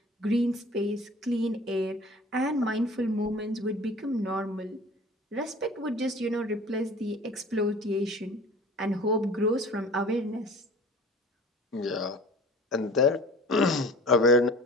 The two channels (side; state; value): both; normal; correlation 0.43